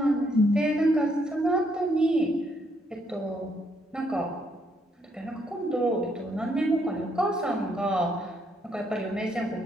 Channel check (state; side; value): normal; both; correlation 0.73